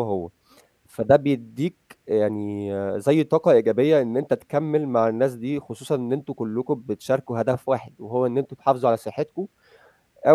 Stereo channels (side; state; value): both; identical; correlation 1.00